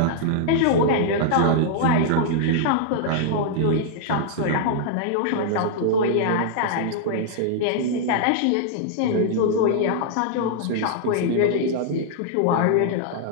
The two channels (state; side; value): different; both; correlation -0.01